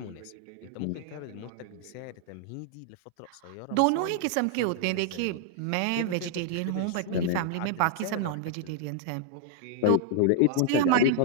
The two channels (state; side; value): different; both; correlation -0.01